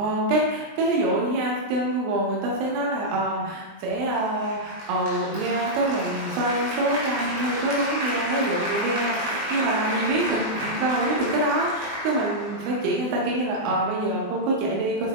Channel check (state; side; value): late; left; 20 ms